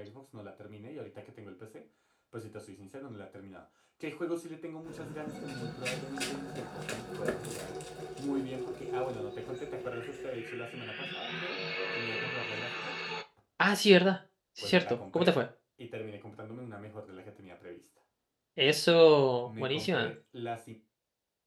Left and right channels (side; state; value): both; identical; correlation 1.00